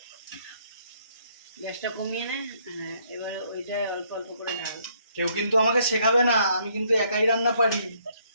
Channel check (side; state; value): both; inverted; correlation -0.68